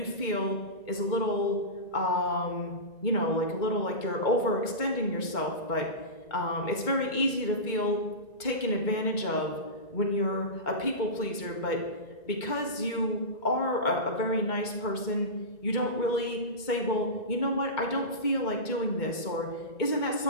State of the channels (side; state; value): right; late; 2.2 ms